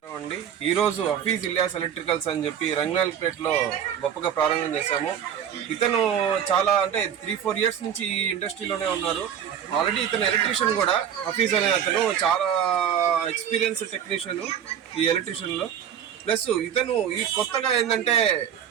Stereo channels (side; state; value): left; quieter; 9.0 dB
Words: అండి. ఈరోజు హఫీజ్ ఇలియాస్ ఎలక్ట్రికల్స్ అని చెప్పి రంగనాయకులపేటలో గొప్పగా ప్రారంభం చేశాము. ఇతను చాలా అంటే 3-4 ఇయర్స్ నుంచి ఈ ఇండస్ట్రీలోనే ఉన్నారు. ఆల్రెడీ ఇతను ఎలక్ట్రీషియన్ కూడా. హఫీజ్ అనే అతను చాలా ఎక్స్పీరియన్స్ టెక్నీషియన్ ఈ ఎలక్ట్రీషియన్లో. ప్లస్ ఇతను ఈ కొత్తగా ఏంటంటే